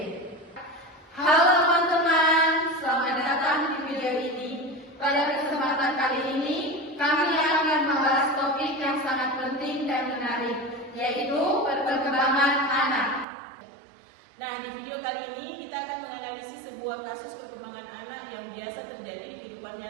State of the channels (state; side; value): drops out; left; at 13.2 s